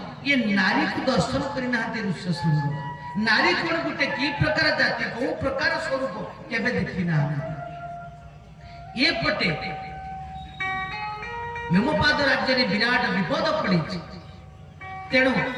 ये नारी को दर्शन करना ऋष्यशृंग। नारी कौन गोटे कि प्रकार जाति कौ प्रकार स्वरूप केबे देखी ना। ये पटे हेमपाद राज्य में विराट विपद पड़ी। तेणु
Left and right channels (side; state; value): both; identical; correlation 1.00